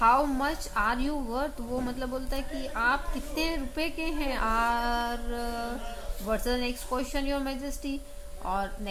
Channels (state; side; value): identical; both; correlation 1.00